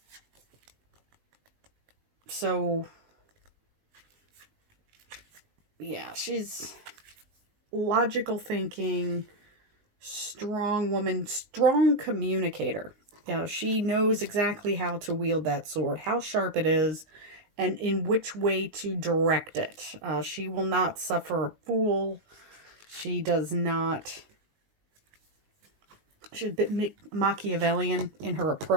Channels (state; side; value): late; left; 20 ms